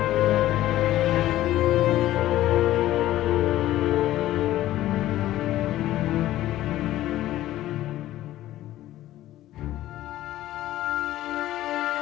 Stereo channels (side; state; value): right; quieter; 14.4 dB